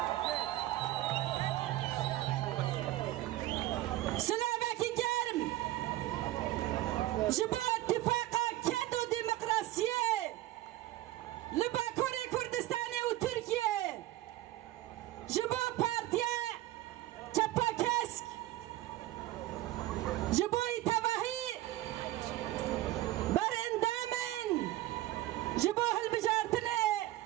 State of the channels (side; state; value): left; quieter; 15.9 dB